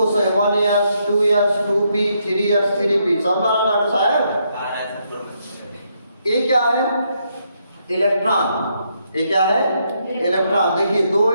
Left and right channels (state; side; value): inverted; both; correlation -0.76